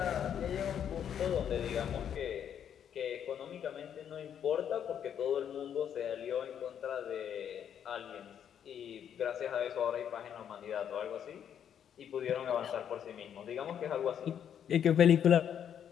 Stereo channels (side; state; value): right; quieter; 8.9 dB